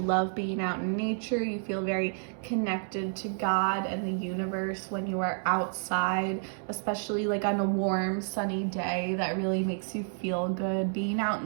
being out in nature. You feel very connected to God and the universe when you are outside, especially like on a warm, sunny day. That really makes you feel good. Being out in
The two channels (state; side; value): silent; left; 58 dB below the other